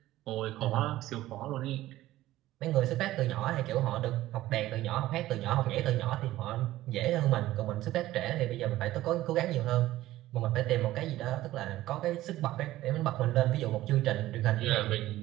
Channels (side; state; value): left; quieter; 15.5 dB